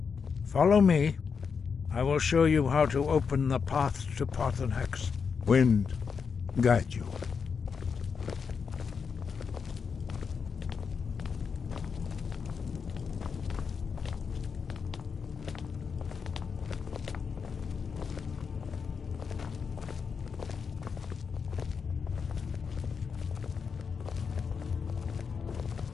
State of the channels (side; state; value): right; quieter; 5.9 dB